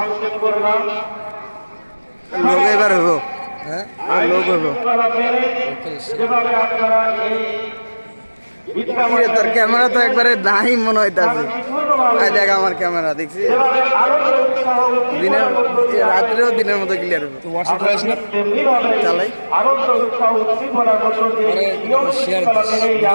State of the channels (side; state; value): both; inverted; correlation -1.00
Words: করলাম। লোক এবার হইব, লোক হইব। তোর ক্যামেরা তো একবারে নাই মনে হইতাছে। দেখ আমার ক্যামেরা দেখছি, দিনের রাত্রেও দিনের মতো ক্লিয়ার হবে। চালাই